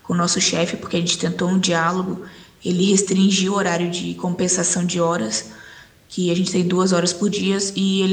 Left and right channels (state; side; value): identical; both; correlation 1.00